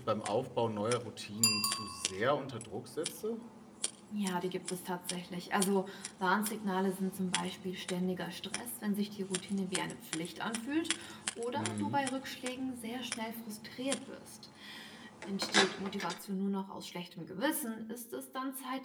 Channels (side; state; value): both; identical; correlation 1.00